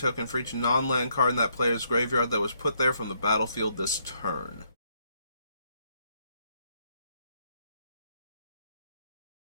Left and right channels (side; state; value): both; inverted; correlation -0.72